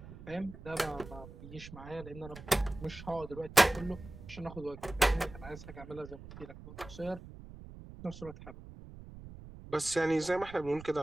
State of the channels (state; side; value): noise; right; rumble, 15 dB below the sound